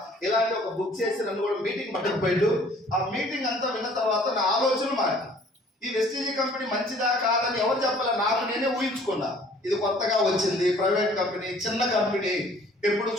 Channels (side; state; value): both; normal; correlation 0.55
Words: ఇలాంటి ఒక బుక్ చేసి నన్ను కూడా మీటింగ్ పట్టుకుపోయాడు. ఆ మీటింగ్ అంతా విన్న తర్వాత నా ఆలోచన మారి, ఈ వెస్టీజ్ కంపెనీ మంచిదా కాదని ఎవరు చెప్పాలి, నాకు నేనే ఊహించుకున్నా. ఇది కొత్తగా వచ్చింది, ప్రైవేట్ కంపెనీ, చిన్న కంపెనీ, ఎప్పుడు